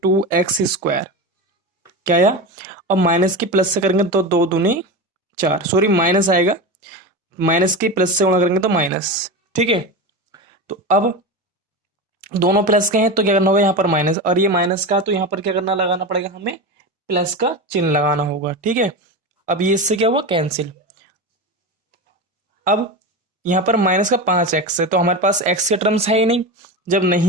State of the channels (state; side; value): normal; both; correlation 0.22